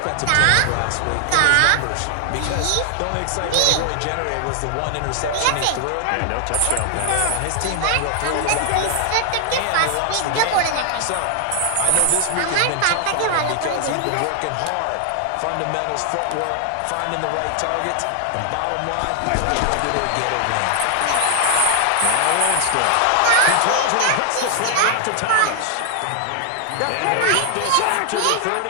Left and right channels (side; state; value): both; different; correlation 0.00